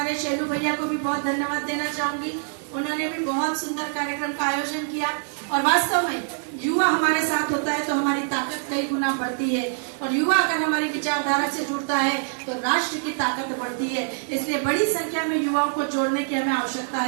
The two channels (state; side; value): silent; left; 62 dB below the other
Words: शैलू भैया को भी बहुत धन्यवाद देना चाहूंगी। उन्होंने भी बहुत सुंदर कार्यक्रम का आयोजन किया और वास्तव में युवा हमारे साथ होता है तो हमारी ताकत कई गुना बढ़ती है और युवा अगर हमारी विचारधारा से जुड़ता है तो राष्ट्र की ताकत बढ़ती है। इसलिए बड़ी संख्या में युवाओं को जोड़ने की हमें आवश्यकता